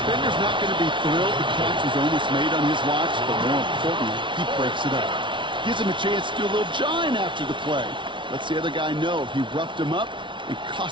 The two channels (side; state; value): left; late; 0.24 ms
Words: not going to be thrilled the catch was almost made on his watch, but more importantly, he breaks it up. Gives him a chance to do a little jawing after the play. Lets the other guy know he roughed him up and